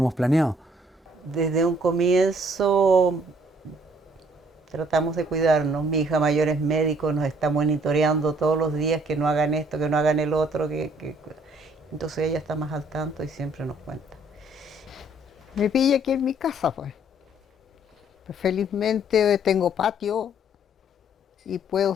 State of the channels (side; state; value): both; normal; correlation 0.62